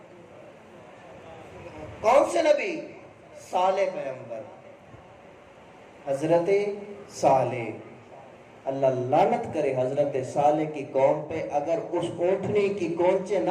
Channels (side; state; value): both; identical; correlation 1.00